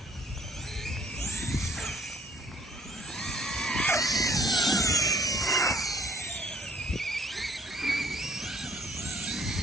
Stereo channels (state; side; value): normal; both; correlation 0.60